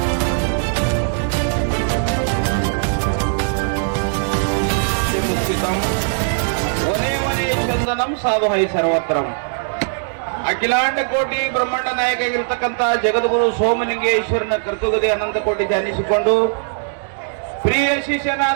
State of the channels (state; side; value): silent; left; digital silence